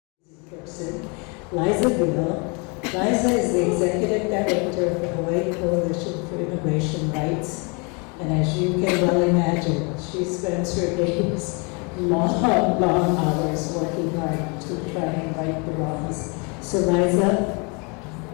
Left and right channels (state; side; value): quieter; right; 32.4 dB